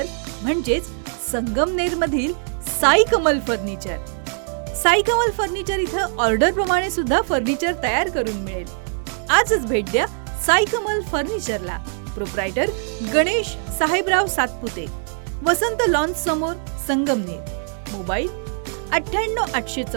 म्हणजेच संगमनेरमधील साई कमल फर्निचर. साई कमल फर्निचर इथं ऑर्डर प्रमाणे सुद्धा फर्निचर तयार करून मिळेल. आजच भेट द्या साई कमल फर्निचरला. प्रोप्रायटर गणेश साहेबराव सातपुते, वसंत लॉन्स समोर, संगमनेर. मोबाईल 98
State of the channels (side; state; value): left; silent; 59 dB below the other